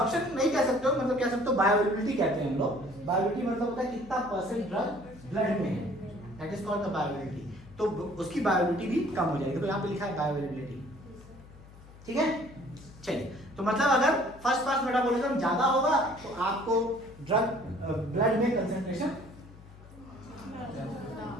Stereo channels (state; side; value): noise; left; hum, 20 dB below the sound